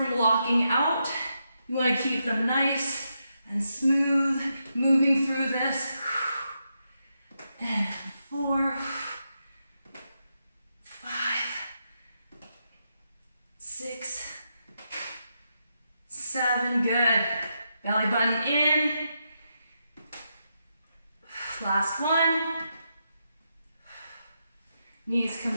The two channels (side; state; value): both; inverted; correlation -0.83